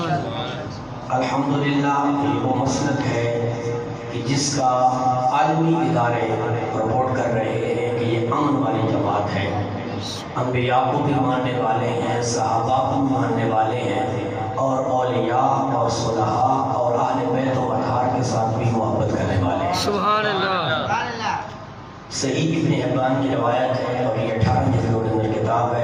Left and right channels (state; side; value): identical; both; correlation 1.00